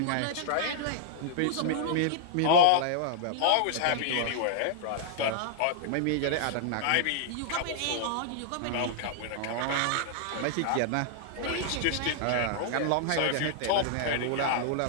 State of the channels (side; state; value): both; different; correlation -0.01